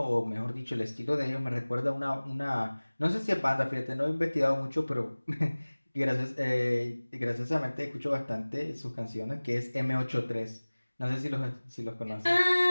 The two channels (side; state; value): both; inverted; correlation -1.00